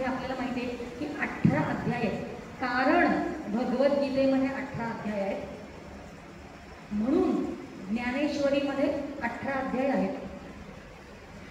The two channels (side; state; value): both; identical; correlation 1.00